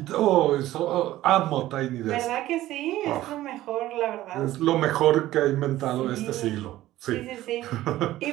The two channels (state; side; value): quieter; left; 15.2 dB